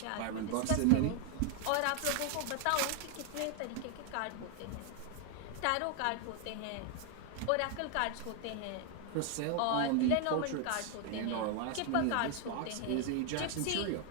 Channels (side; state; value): both; different; correlation 0.00